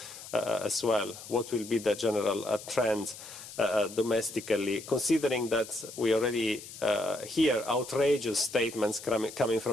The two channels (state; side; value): noise; left; hiss, 14 dB below the sound